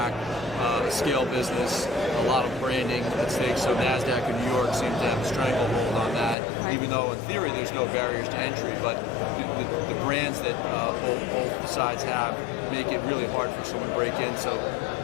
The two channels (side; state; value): right; drops out; at 6.4 s